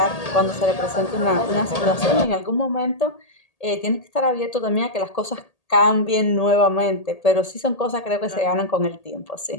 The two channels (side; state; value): right; late; 1.8 ms